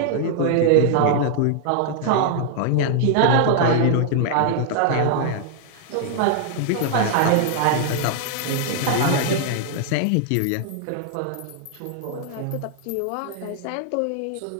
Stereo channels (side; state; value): both; different; correlation 0.00